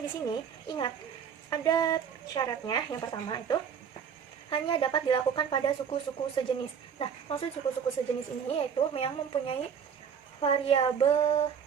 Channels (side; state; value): left; quieter; 7.4 dB